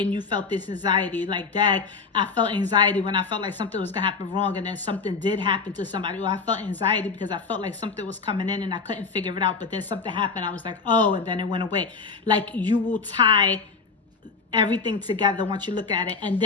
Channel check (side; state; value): right; quieter; 4.8 dB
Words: you felt this anxiety. Like, Dad, I felt anxiety when I felt like something was going to happen wrong, and then something did happen to somebody. Or I felt anxiety because I felt like something was coming in and I couldn't figure it out. But then something happened. I was like, oh, and then it went away. Like, you will tie everything together once you look at it. And